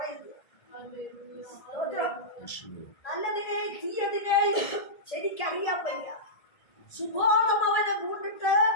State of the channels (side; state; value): right; late; 1.7 ms